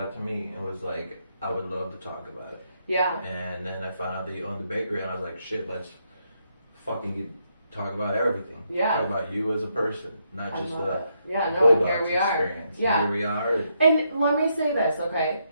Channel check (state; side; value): inverted; both; correlation -0.77